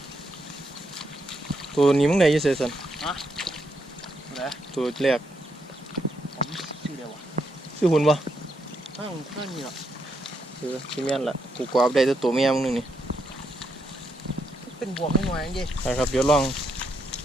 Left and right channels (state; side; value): normal; both; correlation 0.79